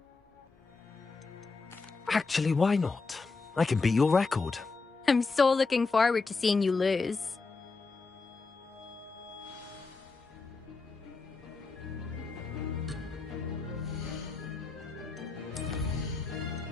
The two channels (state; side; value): quieter; right; 4.2 dB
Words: Actually, why not? I can beat your record. I'm so looking forward to seeing you lose.